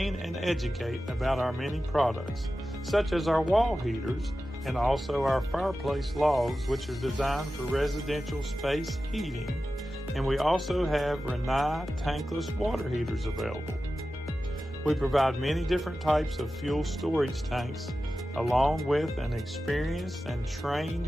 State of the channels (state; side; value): normal; both; correlation 0.94